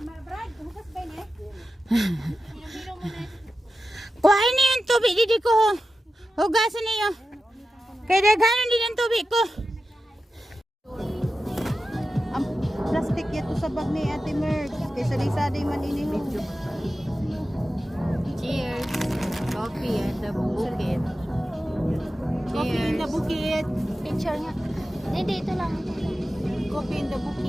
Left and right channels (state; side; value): normal; both; correlation 0.92